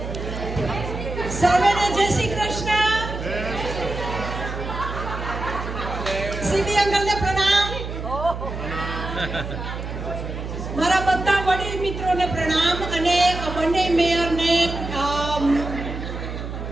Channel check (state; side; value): noise; right; hum, 7 dB below the sound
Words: સર્વેને જય શ્રી કૃષ્ણ. સીબી અંકલને પ્રણામ. મારા બધા વડીલ મિત્રોને પ્રણામ અને બંને મેયરને